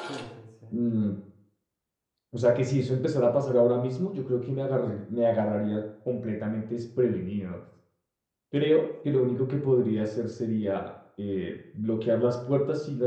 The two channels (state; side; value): identical; both; correlation 1.00